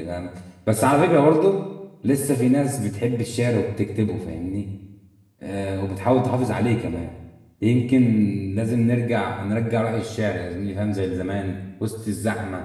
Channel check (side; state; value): both; identical; correlation 1.00